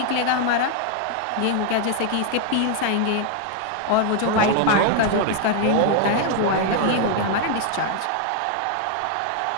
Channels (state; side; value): different; both; correlation 0.00